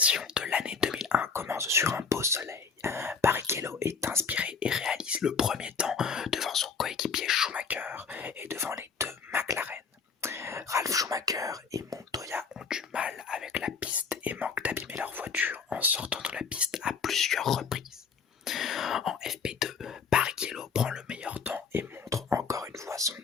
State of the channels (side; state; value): right; quieter; 5.6 dB